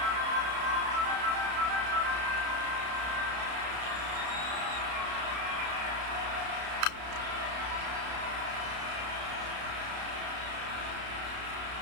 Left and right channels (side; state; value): left; late; 32 ms